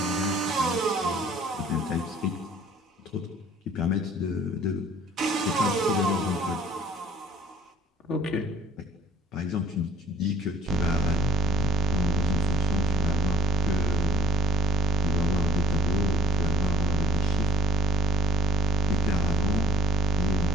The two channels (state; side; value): normal; both; correlation 0.61